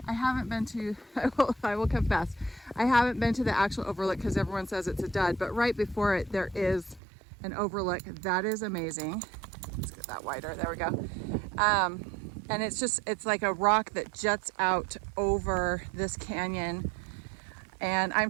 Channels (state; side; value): drops out; left; at 7.0 s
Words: I haven't been to, I will confess, I haven't been to the actual overlook because everyone says it's a dud, but right before it, there is an overlook that is amazing. Let's get that wider, there we go. And it's like a rock that juts out over this canyon. And